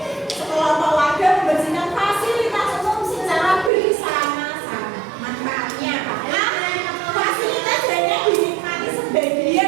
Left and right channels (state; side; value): drops out; left; at 3.7 s